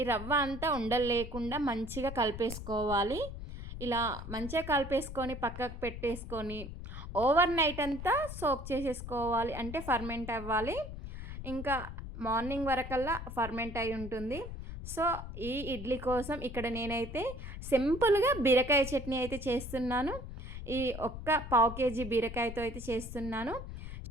రవ్వ అంతా ఉండలు లేకుండా మంచిగా కలిపేసుకోవాలి. ఇలా మంచిగా కలిపేసుకొని పక్కకు పెట్టేసుకొని ఓవర్ నైట్ అంతా సోక్ చేసేసుకోవాలి. అంటే ఫర్మెంట్ అవ్వాలి. ఇంకా మార్నింగ్ వరకల్లా ఫర్మెంట్ అయి ఉంటుంది. సో ఈ ఇడ్లీ కోసం ఇక్కడ నేనైతే సింపుల్గా బీరకాయ చట్నీ అయితే చేస్తున్నాను. ఈ ఒక్క పావు కేజీ బీరకాయతో అయితే చేస్తున్నాను.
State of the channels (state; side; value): noise; left; rumble, 9 dB below the sound